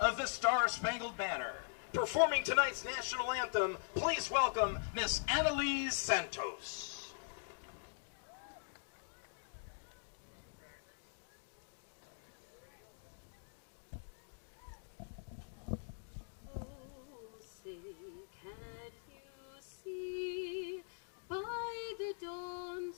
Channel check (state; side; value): silent; right; digital silence